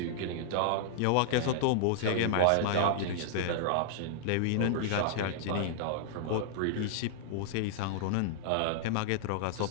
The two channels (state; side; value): different; both; correlation -0.01